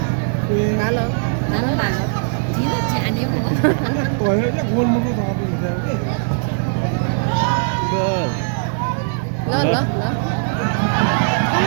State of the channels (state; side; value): silent; left; digital silence